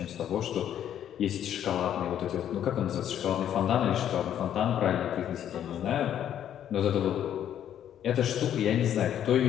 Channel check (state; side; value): quieter; right; 10.3 dB